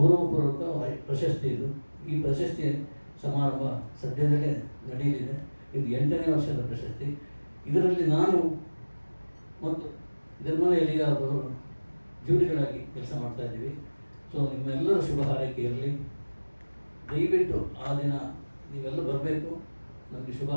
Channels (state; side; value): inverted; both; correlation -1.00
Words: ಪ್ರಶಸ್ತಿ ಇದು. ಈ ಪ್ರಶಸ್ತಿ ಸಮಾರಂಭ ಸದ್ಯದಲ್ಲೇ ನಡೆಯಲಿದೆ. ಇದು 8ನೇ ವರ್ಷದ ಪ್ರಶಸ್ತಿ. ಇದರಲ್ಲಿ ನಾನು ಮತ್ತು ನಿರ್ಮಲ ಎಲಿಗಾರವರು ಜೂರಿಗಳಾಗಿ ಕೆಲಸ ಮಾಡ್ತಾ ಇದ್ದೀವಿ. ಸೊ ನಿಮ್ಮೆಲ್ಲರ ಶುಭ ಹಾರೈಕೆ ಇರಲಿ. ದಯವಿಟ್ಟು ಆ ದಿನ ನೀವೆಲ್ಲ ಬರಬೇಕು, ನಮಗೆ ಶುಭ